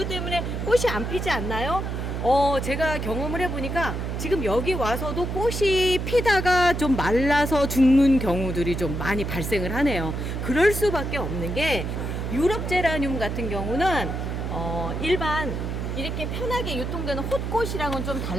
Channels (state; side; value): noise; right; hum, 3 dB below the sound